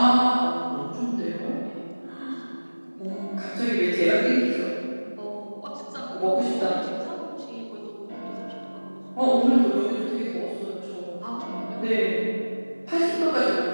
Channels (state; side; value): inverted; both; correlation -1.00